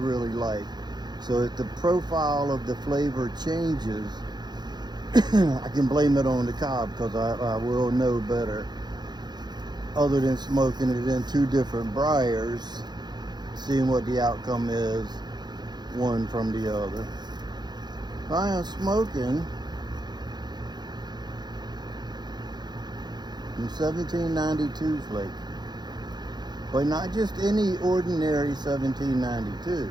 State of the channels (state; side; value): late; left; 0.21 ms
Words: like. So if the profile of the flavor changes, I can blame it on the cob, because I will know better. Other than smoking it in two different briars, seeing what the outcome is, one from the other. I am smoking in 1792 flake, but not just any ordinary 1792.